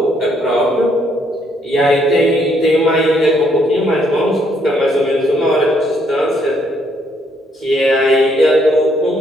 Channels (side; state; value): both; normal; correlation 0.70